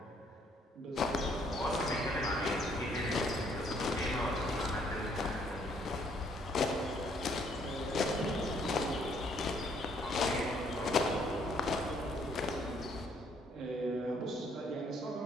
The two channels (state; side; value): normal; both; correlation 0.66